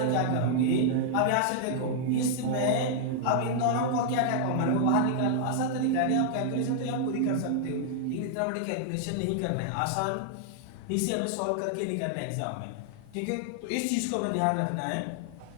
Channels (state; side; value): different; both; correlation -0.01